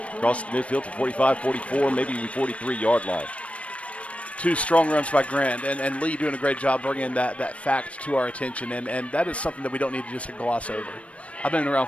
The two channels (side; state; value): right; late; 0.063 ms